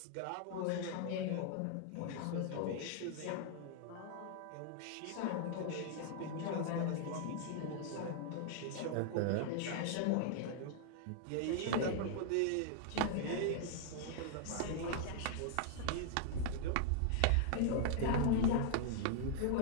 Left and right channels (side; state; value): both; different; correlation -0.01